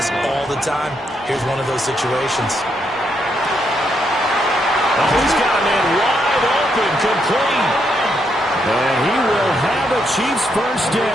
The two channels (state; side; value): normal; both; correlation 0.78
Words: all the time. Here's one of those situations. Oh, he's got a man wide open, complete. And he will have a Chiefs first